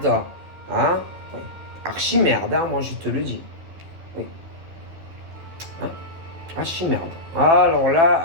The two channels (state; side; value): late; left; 12 ms